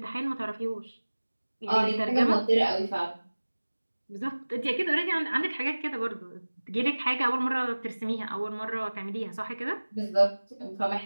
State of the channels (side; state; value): both; inverted; correlation -1.00